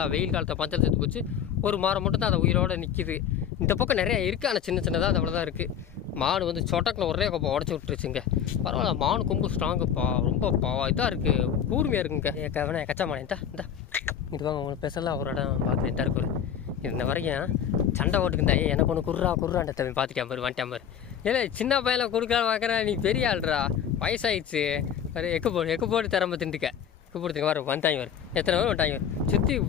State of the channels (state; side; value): quieter; right; 8.8 dB